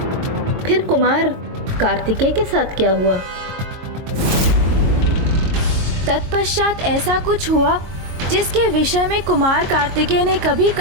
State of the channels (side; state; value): left; late; 22 ms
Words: फिर कुमार कार्तिकेय के साथ क्या हुआ? तत्पश्चात ऐसा कुछ हुआ जिसके विषय में कुमार कार्तिकेय ने कभी